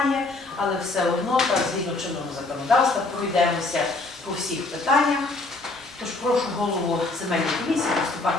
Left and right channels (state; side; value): quieter; right; 3.3 dB